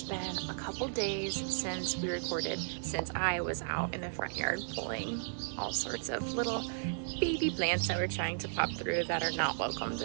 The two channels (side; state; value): left; silent; 55 dB below the other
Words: been a couple days since we recorded, since I was out in the front yard pulling all sorts of little baby plants that we're trying to pop through that are not welcomed